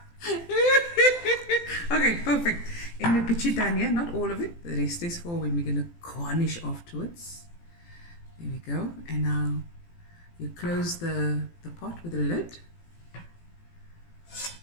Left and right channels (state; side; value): late; right; 18 ms